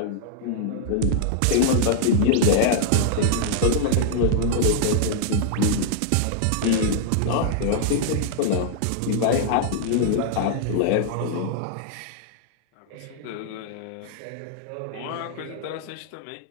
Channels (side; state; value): both; different; correlation -0.01